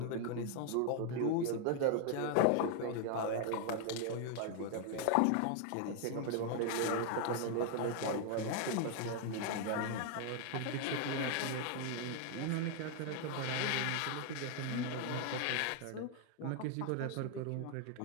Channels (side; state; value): both; different; correlation 0.00